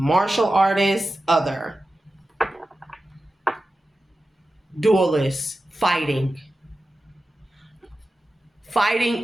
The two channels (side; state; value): both; normal; correlation 0.94